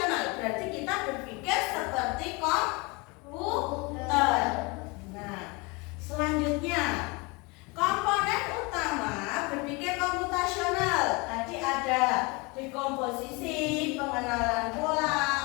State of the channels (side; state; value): right; quieter; 27.4 dB